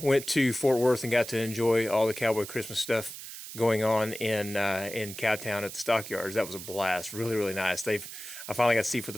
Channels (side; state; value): right; noise; hiss, 11 dB below the sound